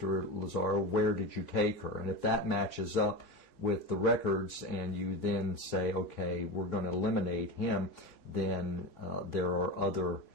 Lazzaro, where did you take her? And if that matches up with the records and you then say, okay, we're going to eliminate him, then there are other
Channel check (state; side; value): late; right; 3.3 ms